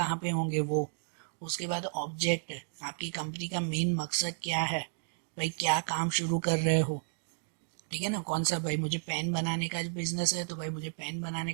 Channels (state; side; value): silent; left; digital silence